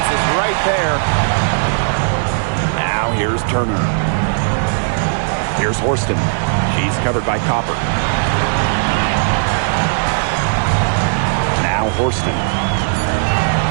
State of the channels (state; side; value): silent; left; 66 dB below the other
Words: is right there. Now here's Turner. Here's Forston. She's covered by Copper. Now Forston.